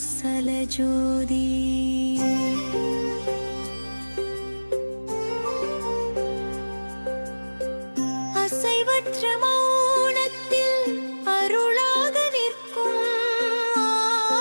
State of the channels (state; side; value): inverted; both; correlation -1.00